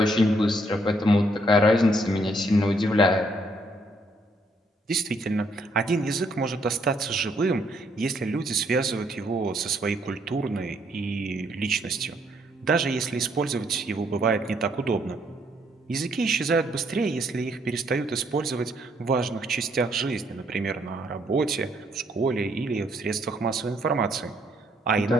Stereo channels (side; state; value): both; normal; correlation 0.70